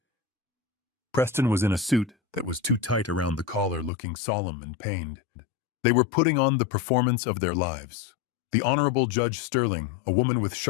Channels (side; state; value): right; drops out; at 3.9 s